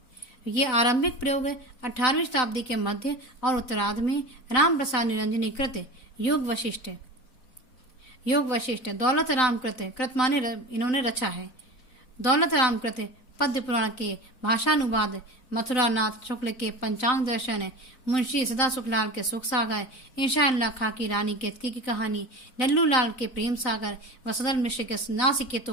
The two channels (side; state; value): right; late; 3.9 ms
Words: ये आरंभिक प्रयोग 18वीं शताब्दी के मध्य और उत्तरार्ध में राम प्रसाद निरंजनी कृत योग वशिष्ठ दौलत राम कृत माने इन्होंने रचा है। दौलत राम कृत पद्य पुराण के भाषानुवाद, मथुरा नाथ शुक्ल के पंचांग दर्शन, मुंशी सदा सुखलाल के सुख सागर, इंशाअल्लाह खां की रानी केतकी की कहानी, लल्लू लाल के प्रेम सागर व सदर मिश्र के